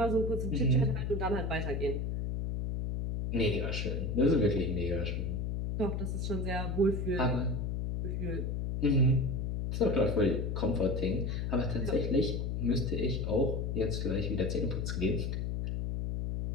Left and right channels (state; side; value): noise; left; hum, 1 dB below the sound